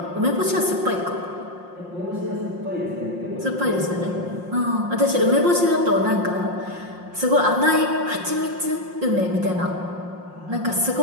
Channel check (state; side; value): late; left; 5.6 ms